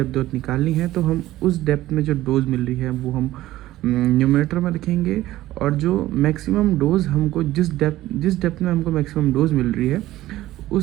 डोज निकालनी है तो हम उस डेप्थ में जो डोज मिल रही है वो हम न्यूमरेटर में लिखेंगे, और जो मैक्सिमम डोज हमको जिस डेप्थ में हमको मैक्सिमम डोज मिल रही है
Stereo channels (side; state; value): left; quieter; 15.5 dB